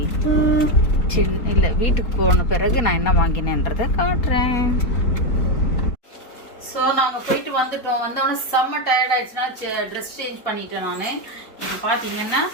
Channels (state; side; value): late; right; 4.1 ms